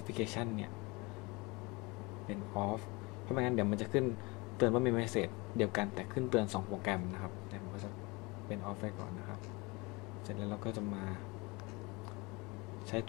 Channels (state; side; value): quieter; right; 26.0 dB